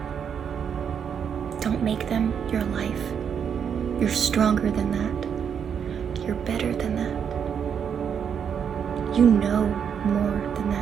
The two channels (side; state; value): left; quieter; 7.6 dB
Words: Don't make them your life. You're stronger than that. You're better than that. You know more than